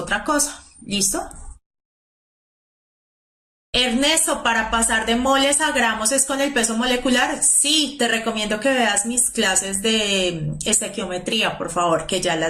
cosa. ¿Listo? Ernesto, para pasar de moles a gramos es con el peso molecular. Sí, te recomiendo que veas mis clases de estequiometría, por favor, que ya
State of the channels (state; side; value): identical; both; correlation 1.00